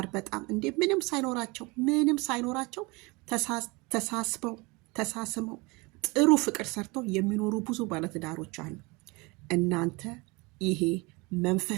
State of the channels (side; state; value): left; quieter; 26.1 dB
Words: በጣም እንዴ ምንም ሳይኖራቸው ተሳስመው ጥሩ ፍቅር ሰርተው የሚኖሩ ብዙ ባለትዳሮች አሉ። እናንተ ይሄ